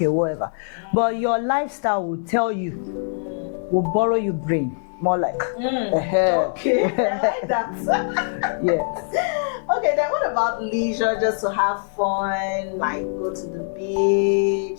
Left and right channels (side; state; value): right; silent; digital silence